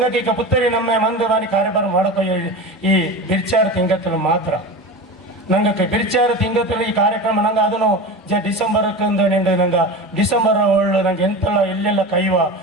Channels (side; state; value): both; normal; correlation 0.28